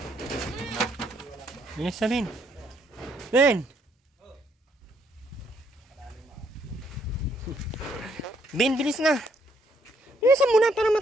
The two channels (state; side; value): normal; both; correlation 0.70